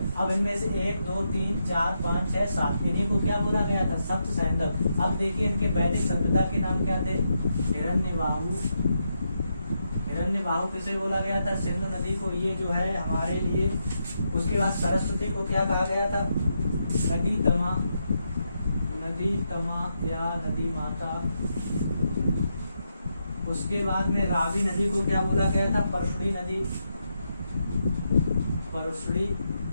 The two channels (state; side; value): inverted; both; correlation -0.83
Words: अब इनमें से 1 2 3 4 5 6 7 इन्हीं को क्या बोला गया था? सप्त सैंधव। अब देखिए इनके वैदिक सभ्यता के नाम क्या थे? हिरण्यबाहु, हिरण्यबाहु किसे बोला गया था? सिंधु नदी को, ये जो है हमारे लिए। उसके बाद सरस्वती को क्या कहा गया था? नदी तमा, नदी तमा या नदी माता। उसके बाद में रावी नदी को क्या बोला गया था? परशुड़ी नदी, परशुड़ी